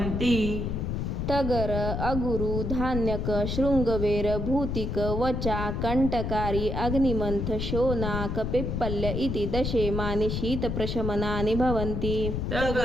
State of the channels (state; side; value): noise; left; rumble, 2 dB below the sound